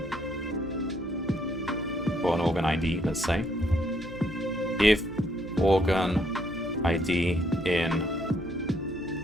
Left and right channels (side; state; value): right; noise; hum, 18 dB below the sound